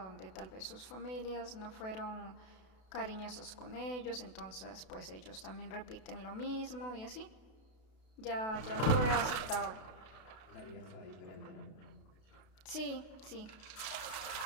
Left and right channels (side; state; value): right; late; 32 ms